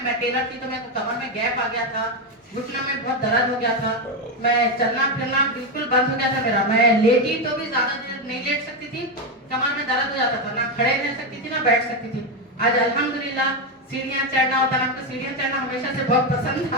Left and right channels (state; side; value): normal; both; correlation 0.09